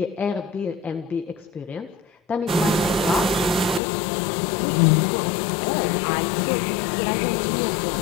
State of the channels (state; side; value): drops out; right; at 3.8 s